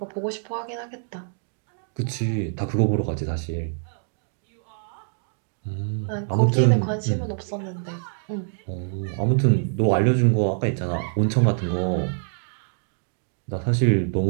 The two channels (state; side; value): silent; left; digital silence